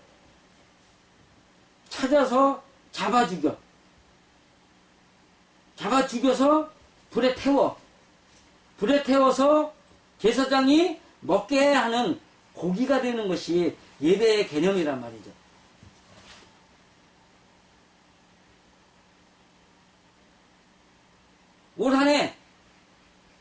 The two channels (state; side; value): identical; both; correlation 1.00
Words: 찾아서 잡아 죽여서 불에 태워서 제사장이 먹게 하는 고기가 되는 것이 예배의 개념이란 말이죠. 올 한 해